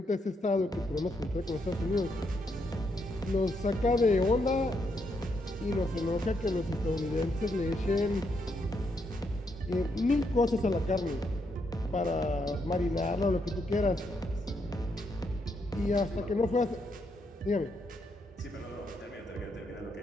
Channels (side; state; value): both; normal; correlation 0.78